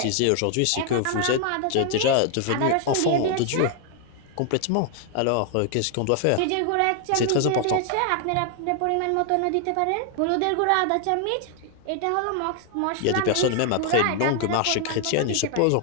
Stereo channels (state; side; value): different; both; correlation 0.00